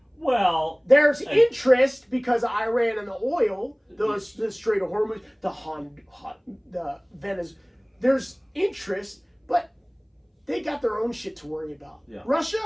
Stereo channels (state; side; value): identical; both; correlation 1.00